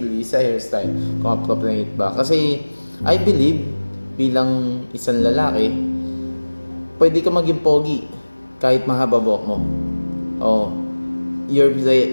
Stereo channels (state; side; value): inverted; both; correlation -1.00